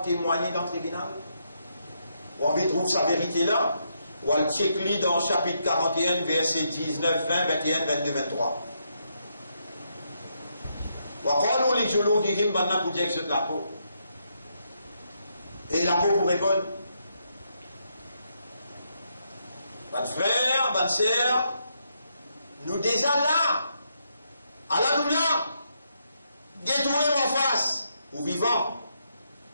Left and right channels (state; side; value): inverted; both; correlation -0.78